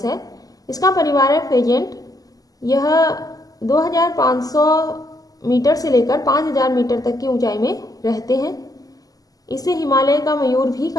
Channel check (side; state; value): right; late; 0.17 ms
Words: है। इसका परिवार है फेजेंट। यह 2500 मीटर से लेकर 5000 मीटर तक की ऊंचाई में रहते हैं। इसे हिमालय का मयूर भी